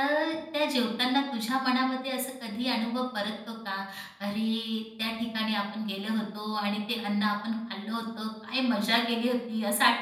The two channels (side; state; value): both; identical; correlation 1.00